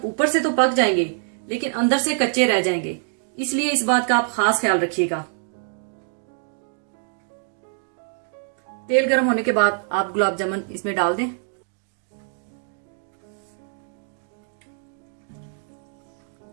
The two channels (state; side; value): silent; left; 62 dB below the other